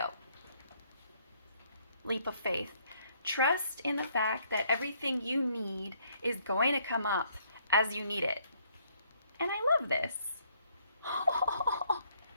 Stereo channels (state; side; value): inverted; both; correlation -0.67